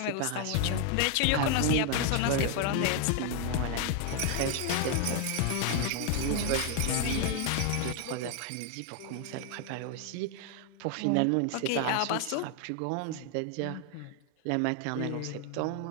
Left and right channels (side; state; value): both; different; correlation 0.01